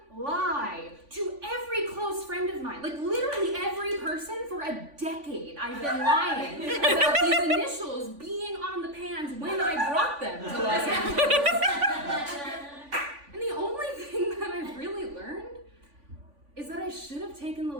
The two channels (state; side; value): late; left; 3.5 ms